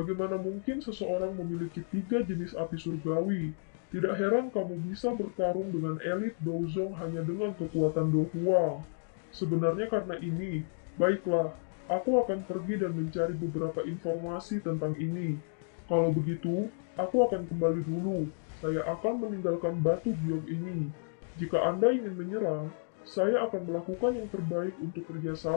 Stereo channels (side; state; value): right; silent; digital silence